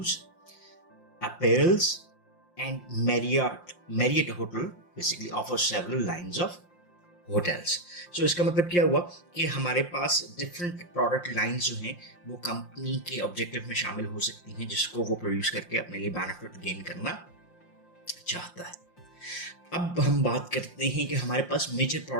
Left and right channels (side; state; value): right; late; 5.7 ms